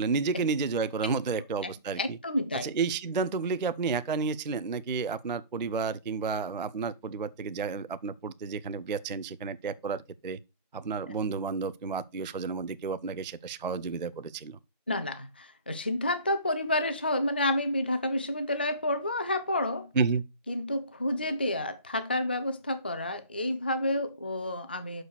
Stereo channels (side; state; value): both; inverted; correlation -0.37